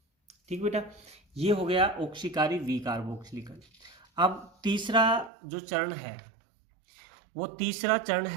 ठीक बेटा, ये हो गया ऑक्सीकारी वी कार्बोक्सिलीकरण। अब तीसरा जो चरण है, वो तीसरा चरण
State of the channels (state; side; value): drops out; left; at 5.3 s